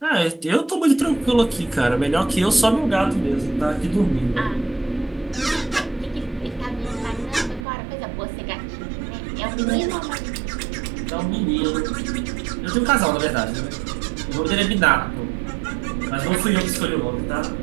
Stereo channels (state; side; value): drops out; left; at 7.7 s